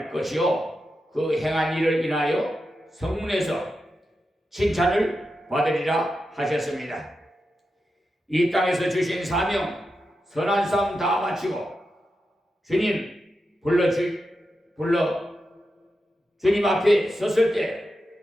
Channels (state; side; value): normal; both; correlation 0.89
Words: 것이요 그 행한 일을 인하여 성문에서 칭찬을 받으리라 하셨습니다. 이 땅에서 주신 사명 선한 싸움 다 마치고 주님 주님 앞에 섰을 때